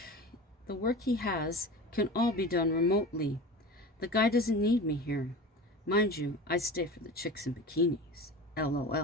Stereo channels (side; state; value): both; normal; correlation 0.33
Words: he has can all be done remotely. The guy doesn't need me here. Mind you, I stay for the chicks in bikinis.